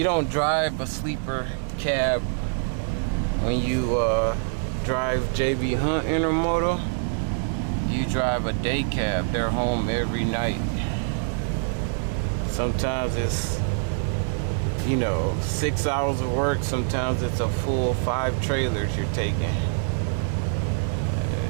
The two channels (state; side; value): silent; left; digital silence